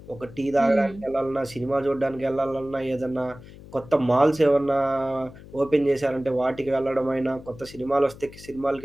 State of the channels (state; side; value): noise; left; hum, 18 dB below the sound